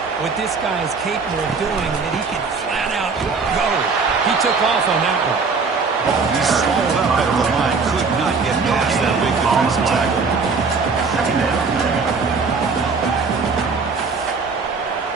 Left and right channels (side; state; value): left; quieter; 4.7 dB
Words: what this guy is capable of doing, and that he can flat out go. He took off on that one. He swallowed up at the line, could not get past that big defensive tackle.